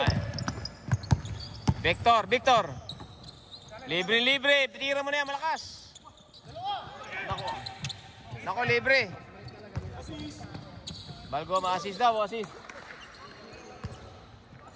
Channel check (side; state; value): both; identical; correlation 1.00